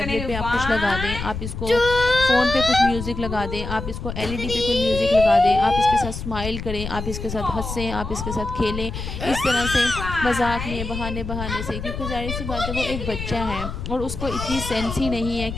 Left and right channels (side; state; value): left; noise; rumble, 7 dB below the sound